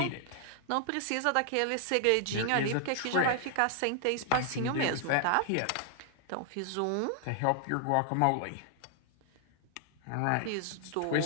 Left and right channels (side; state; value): both; different; correlation 0.00